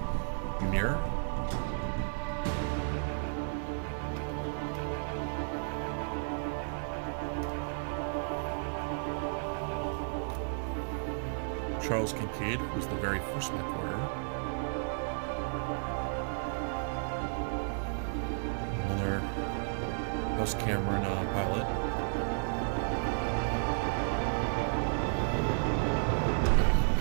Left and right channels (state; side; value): silent; left; digital silence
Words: Ymir. Charles Kincaid was the very first mech warrior. Another House Cameron pilot.